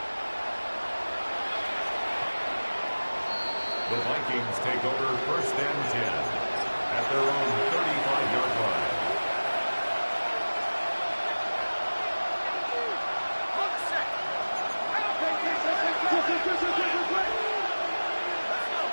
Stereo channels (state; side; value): inverted; both; correlation -1.00